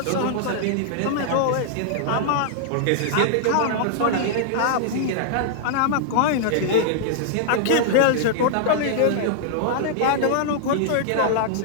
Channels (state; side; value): different; both; correlation -0.01